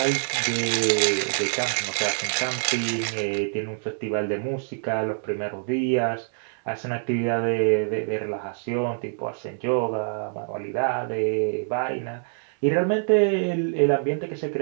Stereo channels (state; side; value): silent; left; 61 dB below the other